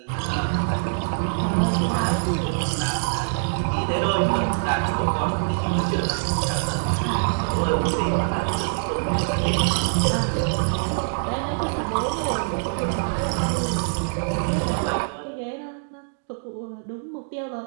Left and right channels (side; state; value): left; silent; digital silence